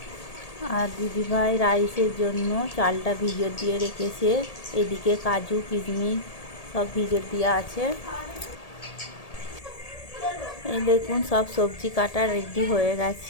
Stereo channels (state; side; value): late; right; 1.8 ms